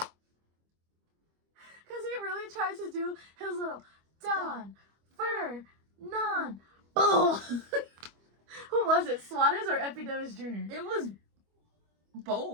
Because he really tried to do his little Don Fernan. Boom. Who was it? Suarez or Epidemis Jr.? It was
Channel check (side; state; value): left; late; 25 ms